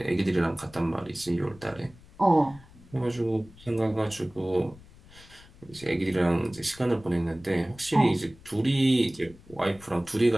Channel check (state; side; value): noise; left; rumble, 23 dB below the sound